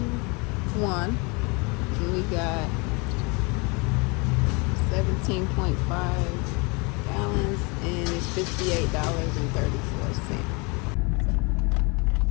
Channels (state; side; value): quieter; right; 29.6 dB